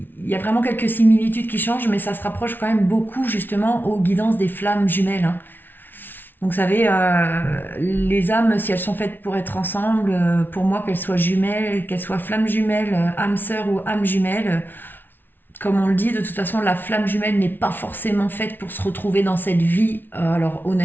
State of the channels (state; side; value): late; right; 0.095 ms